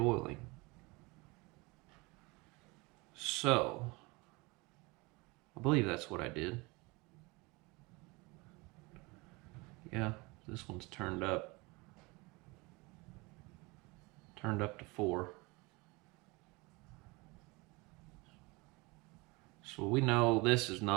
So, I believe that's what I did. Yeah, this one's turned up to 4. So we know this is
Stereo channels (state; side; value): quieter; left; 25.5 dB